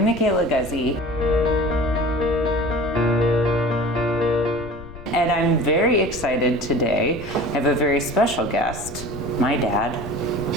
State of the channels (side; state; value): left; noise; rumble, 15 dB below the sound